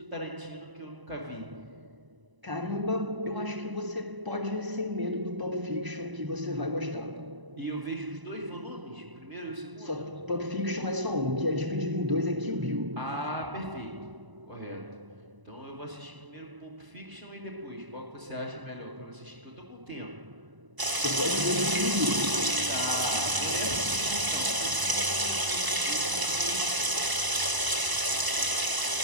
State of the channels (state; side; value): late; left; 1.0 ms